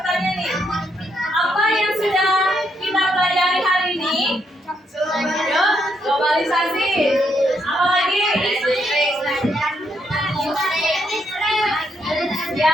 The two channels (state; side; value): normal; both; correlation 0.76